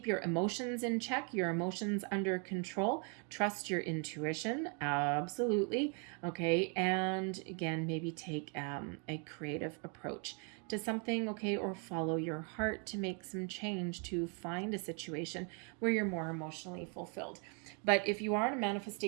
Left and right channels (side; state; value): left; quieter; 37.8 dB